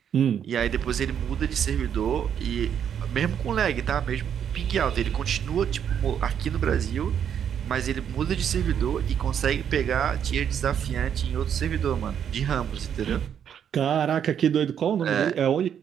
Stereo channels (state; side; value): quieter; left; 8.6 dB